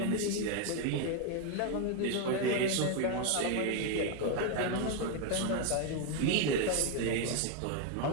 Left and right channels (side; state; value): both; different; correlation 0.01